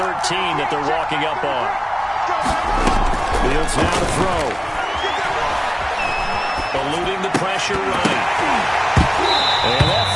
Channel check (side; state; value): both; identical; correlation 1.00